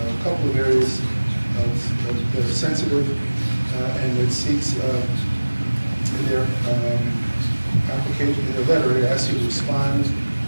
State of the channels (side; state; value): both; inverted; correlation -1.00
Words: couple of areas that are sensitive, and it seeks, in their application, in their letter, it asks you to respond,